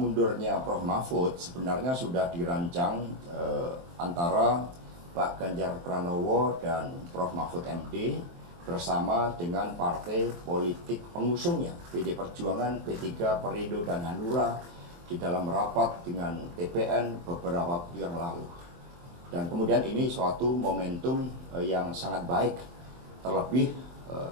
Prof. Mahfud, sebenarnya sudah dirancang antara Pak Ganjar Pranowo dan Prof. Mahfud MD bersama dengan partai politik pengusungnya, PD Perjuangan, P3, Perindo, dan Hanura di dalam rapat dengan TPN beberapa waktu yang lalu. Dan kemudian ini suatu momentum yang sangat baik, terlebih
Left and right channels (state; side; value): late; left; 23 ms